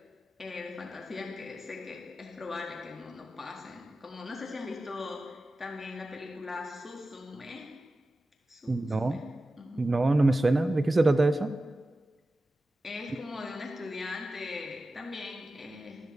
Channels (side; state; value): both; normal; correlation 0.94